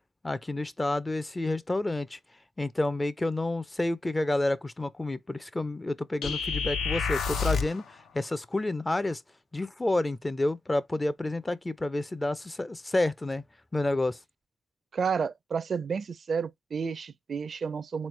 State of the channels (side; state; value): both; normal; correlation 0.91